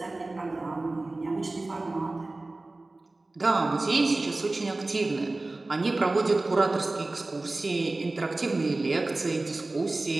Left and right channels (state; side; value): quieter; left; 3.0 dB